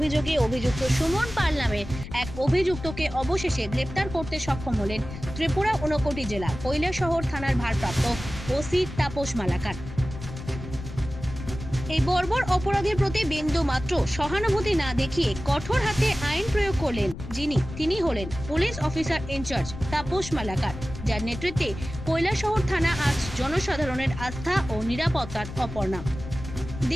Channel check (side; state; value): left; noise; rumble, 11 dB below the sound